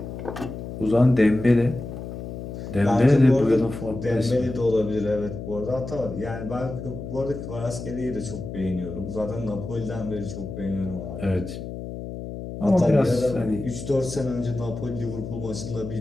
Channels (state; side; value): noise; left; hum, 8 dB below the sound